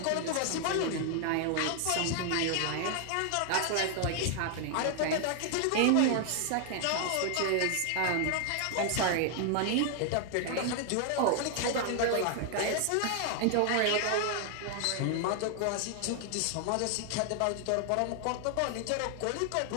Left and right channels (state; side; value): different; both; correlation 0.00